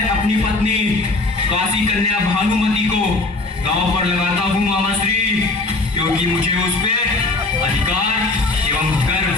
अपनी पत्नी काशी कन्या भानुमति को दांव पर लगाता हूँ मामाश्री, क्योंकि मुझे उस पे अधिकार एवं गर्व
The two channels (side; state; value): right; quieter; 3.3 dB